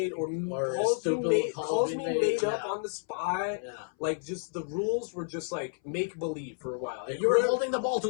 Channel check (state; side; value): silent; right; 58 dB below the other